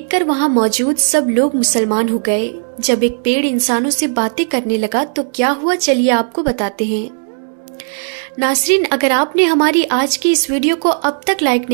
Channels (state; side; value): silent; left; digital silence